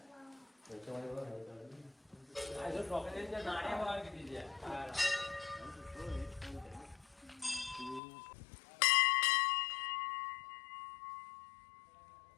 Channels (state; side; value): drops out; right; at 8.0 s